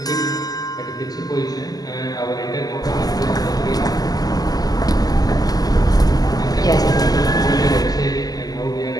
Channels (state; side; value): late; right; 0.18 ms